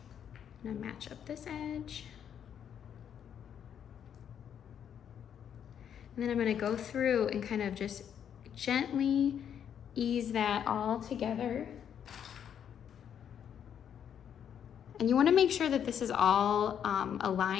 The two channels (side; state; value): right; quieter; 8.7 dB